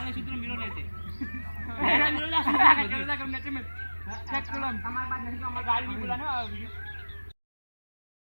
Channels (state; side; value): inverted; both; correlation -1.00